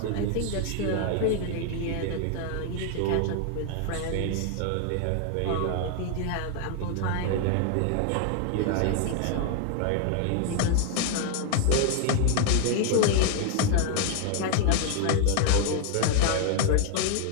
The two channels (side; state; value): both; different; correlation 0.01